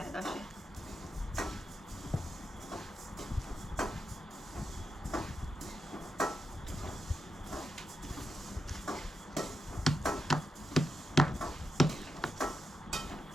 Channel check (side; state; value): both; normal; correlation 0.86